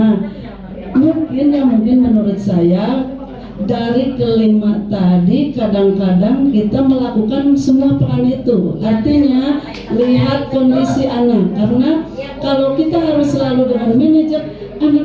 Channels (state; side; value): identical; both; correlation 1.00